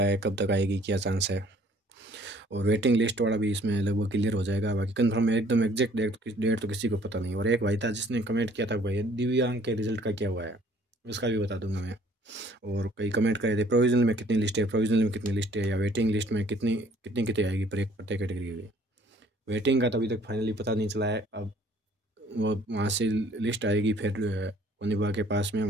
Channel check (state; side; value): normal; both; correlation 0.58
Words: है, कब तक आएगी, क्या चांस है, और वेटिंग लिस्ट वाला भी इसमें लगभग क्लियर हो जाएगा। बाकी कंफर्म एकदम एग्जैक्ट डेट तो किसी को पता नहीं। और एक भाई था जिसने कमेंट किया था भाई दिव्यांग के रिजल्ट का क्या हुआ है, उसका भी बता दूंगा मैं। और कई कमेंट करे थे प्रोविजनल में कितनी लिस्ट है, प्रोविजनल में कितनी लिस्ट है, या वेटिंग लिस्ट में कितनी कितनी कितनी आएगी प्रत्येक कैटेगरी की। वेटिंग का तो अभी तक फाइनली पता नहीं चला है। अब वो वहाँ से लिस्ट आएगी, फिर वन विभाग के पास में,